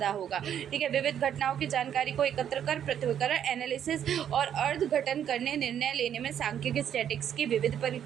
होगा। ठीक है, विविध घटनाओं की जानकारी को एकत्र कर पृथक्करण, एनालिसिस और अर्धघटन करने, निर्णय लेने में सांख्यिकी स्टैटिस्टिक्स की विविध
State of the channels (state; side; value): quieter; left; 9.4 dB